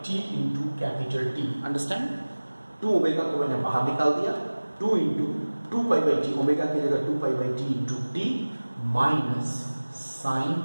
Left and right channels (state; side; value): inverted; both; correlation -1.00